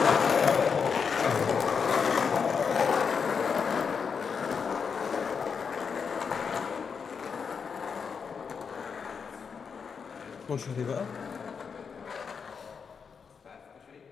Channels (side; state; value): right; quieter; 6.1 dB